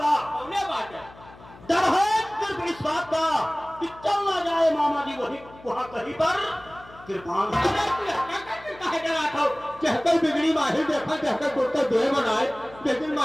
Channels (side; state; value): left; noise; hum, 21 dB below the sound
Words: बात है, डर है सिर्फ इस बात का कि चल ना जाए मामा जी वही वहां कहीं पर कृपान। कहकर बिगड़ी माहिर देखा, कहकर कुत्ता दो बनाए, लेकिन